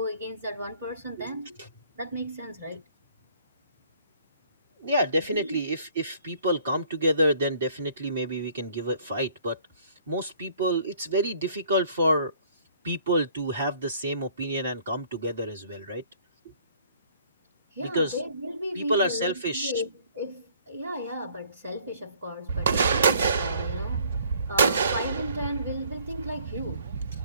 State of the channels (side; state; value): both; inverted; correlation -0.58